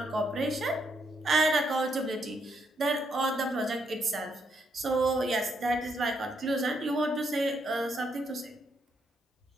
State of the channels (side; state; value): both; normal; correlation 0.76